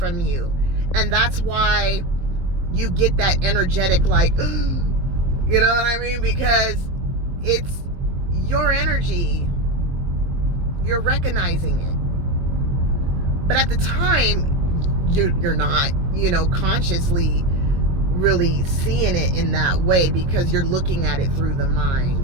you. And that's why you get that energetic, like, you know what I mean? Because it's your energy. You're recognizing it. But at the time, you're not, consciously really seeing it in that way, because you're looking at it through the mind,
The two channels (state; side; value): late; left; 22 ms